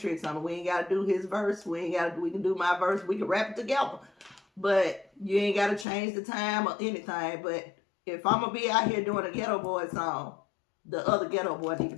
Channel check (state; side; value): drops out; right; at 5.9 s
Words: on him. We ain't got to do his verse. We can do my verse. We can rap it together. But you ain't got to change the time or anything. But if I'm going to be out here doing a Ghetto Boy song, the other Ghetto Boy need to